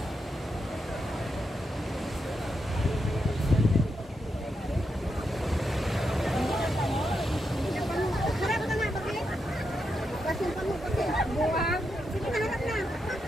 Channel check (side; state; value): both; normal; correlation 0.84